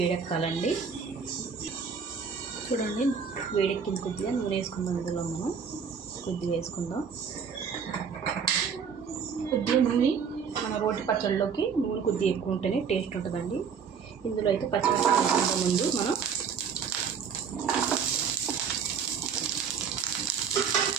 చూడండి, వేడెక్కింది. కొద్దిగా నూనె వేసుకుందాం. ఇందులో మనం కొద్దిగా వేసుకుందాం. కొద్దిగా నూనె మన రోటి పచ్చళ్ళలోకి నూనె కొద్దిగా ఎక్కువ ఉంటేనే టేస్ట్ ఉంటుందండి. ఇందులో అయితే పచ్చిమిరపకాయలు వేసుకుందాం. ముందు మనం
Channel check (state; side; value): quieter; left; 6.5 dB